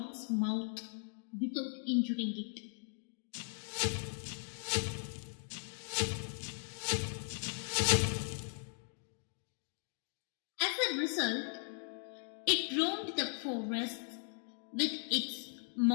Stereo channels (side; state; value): right; silent; 52 dB below the other